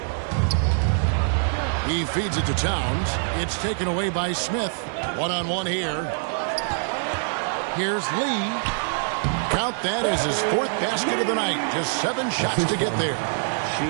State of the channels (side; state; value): left; silent; 62 dB below the other